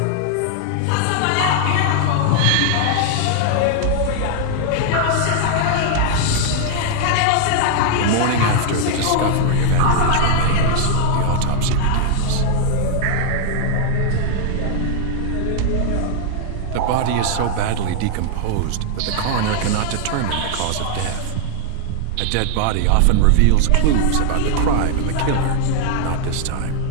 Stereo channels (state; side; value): different; both; correlation 0.00